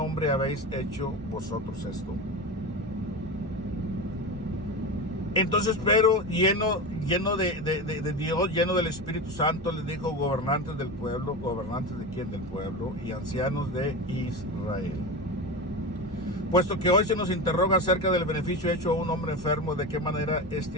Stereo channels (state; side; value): normal; both; correlation 0.23